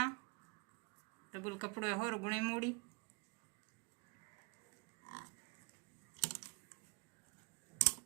डबल कपड़ो होर गुणे मोड़ी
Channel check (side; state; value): left; quieter; 32.8 dB